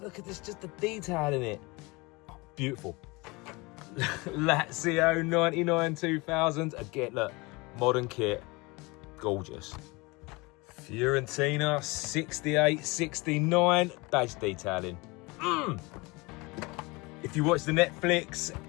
look at this, just the detail in it. Oh, beautiful. Lazio 99, 2000. Again, look, modern kit, gorgeous. Fiorentina 68, 69. Badge detailing. If you watched the Netflix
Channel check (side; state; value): right; quieter; 25.2 dB